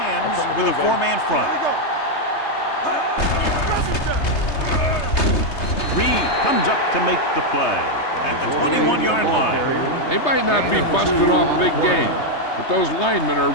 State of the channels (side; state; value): right; late; 3.3 ms